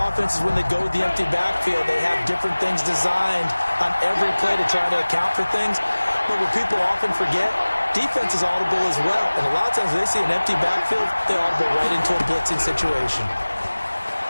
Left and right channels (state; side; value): inverted; both; correlation -1.00